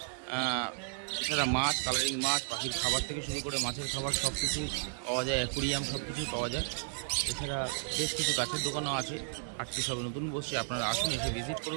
এছাড়া মাছ, কালারিং মাছ, পাখির খাবার থেকে শুরু করে মাছের খাবার সব কিছুই পাওয়া যায়, অ্যাকুরিয়াম সব কিছুই পাওয়া যায়। এছাড়া বেশ কিছু গাছের দোকানও আছে। হাটটি সবে নতুন বসছে, আপনারা আসুন, এসে ভিজিট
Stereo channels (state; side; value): silent; left; digital silence